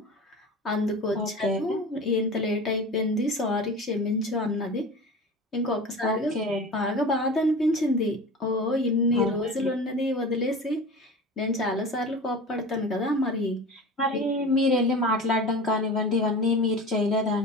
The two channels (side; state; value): both; normal; correlation 0.34